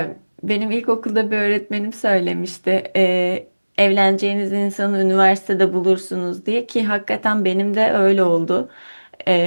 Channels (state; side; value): inverted; both; correlation -1.00